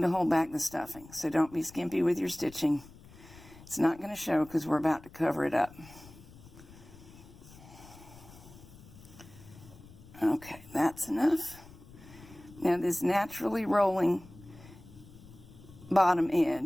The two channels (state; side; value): noise; left; rumble, 20 dB below the sound